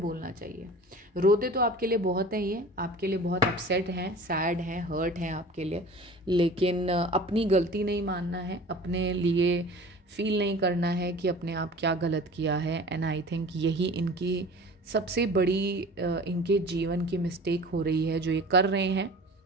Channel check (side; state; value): both; normal; correlation 0.41